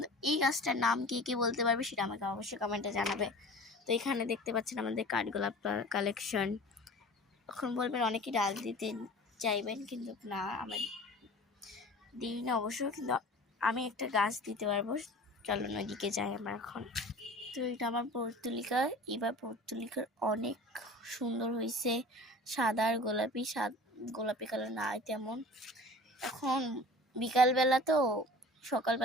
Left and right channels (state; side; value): normal; both; correlation 0.41